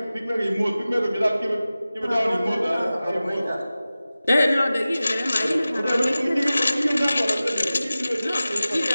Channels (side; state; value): both; inverted; correlation -0.96